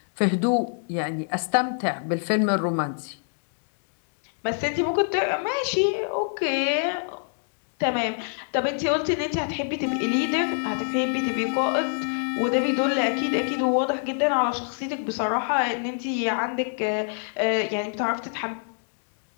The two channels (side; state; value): right; silent; digital silence